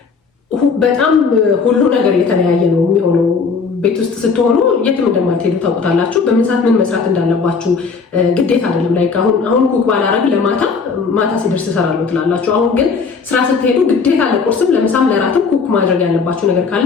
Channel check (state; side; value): quieter; right; 5.1 dB